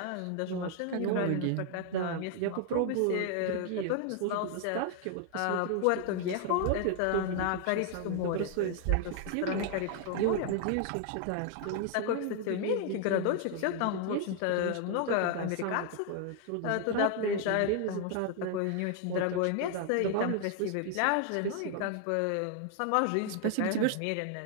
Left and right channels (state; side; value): different; both; correlation 0.00